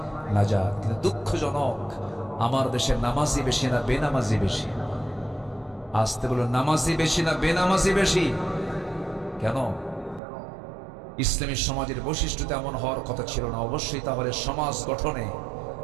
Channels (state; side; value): drops out; left; at 10.2 s